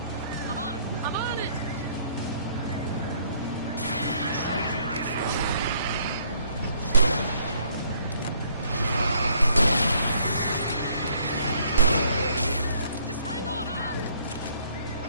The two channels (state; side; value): inverted; both; correlation -0.64